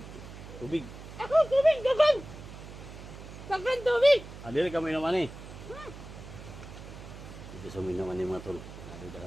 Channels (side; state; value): right; noise; hum, 14 dB below the sound